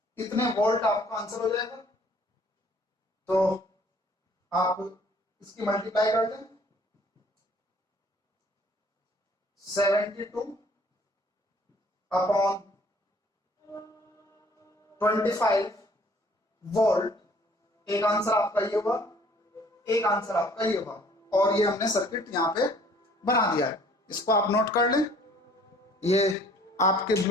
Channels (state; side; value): normal; both; correlation 0.57